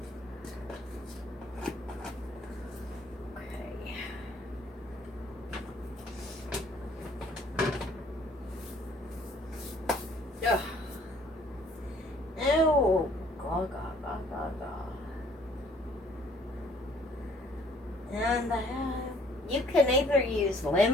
Okay. Ugh. Oh, God. And you can either use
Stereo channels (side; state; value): both; normal; correlation 0.60